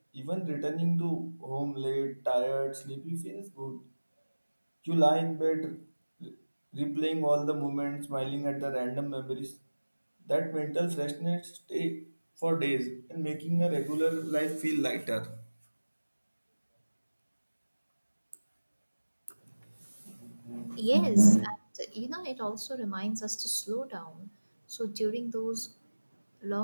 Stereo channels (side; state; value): both; inverted; correlation -1.00